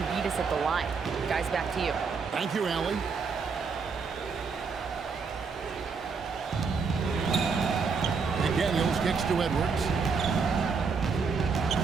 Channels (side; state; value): left; quieter; 5.1 dB